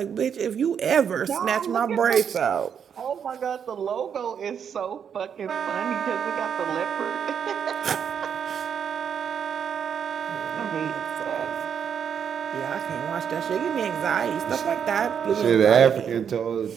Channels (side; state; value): left; quieter; 7.7 dB